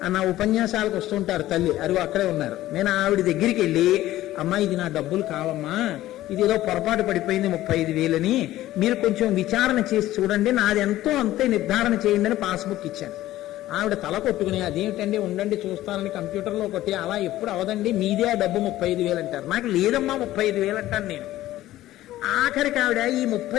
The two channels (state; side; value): quieter; right; 15.0 dB